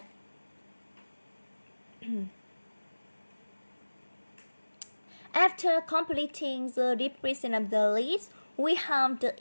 After completing the description of the list, we have the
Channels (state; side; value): inverted; both; correlation -1.00